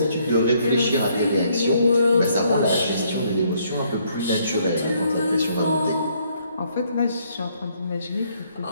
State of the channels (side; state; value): both; inverted; correlation -0.69